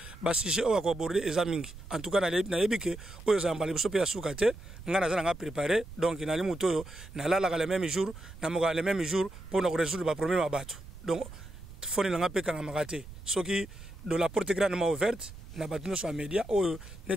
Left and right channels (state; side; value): noise; right; rumble, 15 dB below the sound